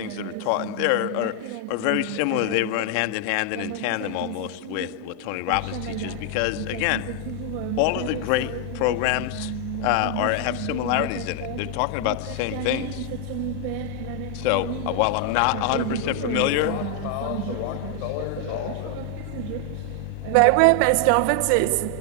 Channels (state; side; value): different; both; correlation 0.00